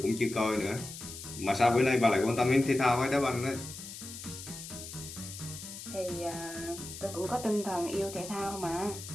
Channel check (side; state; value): left; noise; hiss, 11 dB below the sound